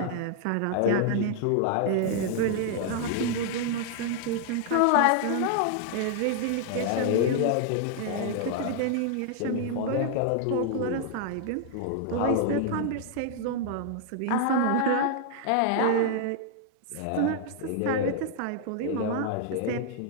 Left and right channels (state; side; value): different; both; correlation 0.00